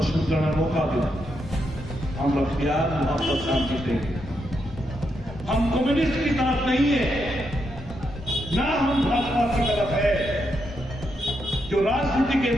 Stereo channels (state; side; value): normal; both; correlation 0.81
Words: সূচনার মौका दिया, আমরা प्यार मोहब्बत शांति देंगे। हम कम्युनिस्ट की तरफ नहीं है, ना हम भाजपा की तरफ है, जो राजनीति के